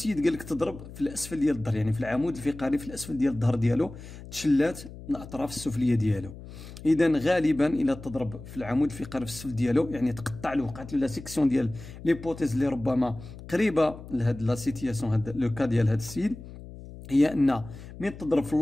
قال لك تضرب في الاسفل ديال الظهر، يعني في العمود الفقري في الاسفل ديال الظهر ديالو تشلات الاطراف السفليه ديالو. اذا غالبا الى تضرب في العمود الفقري في السفل ديالو يعني تقطع له، وقعت له لا سيكسيون ديال ليبوتيز اللي ربما قريبه لهاد لا سيتياسيون، هاد لو كا ديال هاد السيد، هي ان من تضرب في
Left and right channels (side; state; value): left; noise; hum, 15 dB below the sound